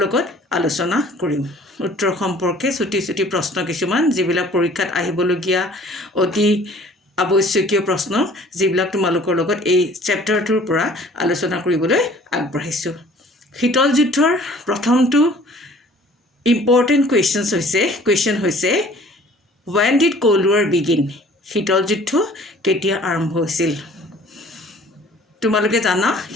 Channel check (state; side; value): normal; both; correlation 0.52